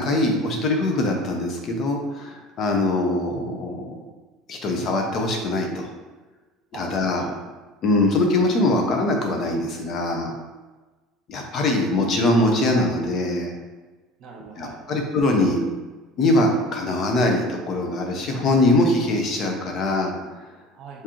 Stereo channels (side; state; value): both; normal; correlation 0.39